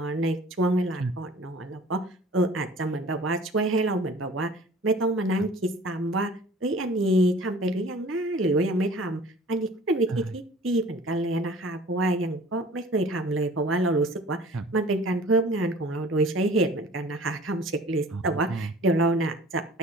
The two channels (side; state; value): both; normal; correlation 0.47